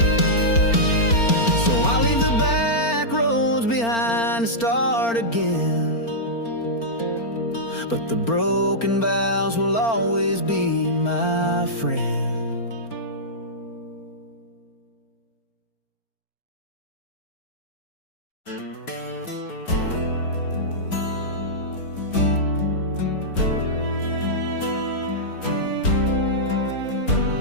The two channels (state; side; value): late; right; 4.4 ms